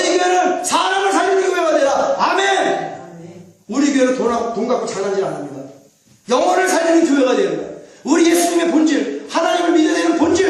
교회는 사람을 살리는 교회가 되라. 아멘. 우리 교회는 돈 갖고 장난질 안 합니다. 영혼을 살리는 교회가 됩니다. 우리 예수님의 본질, 하나님을 믿어야 되는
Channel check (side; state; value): both; identical; correlation 1.00